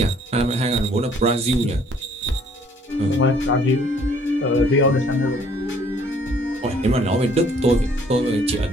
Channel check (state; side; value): normal; both; correlation 0.60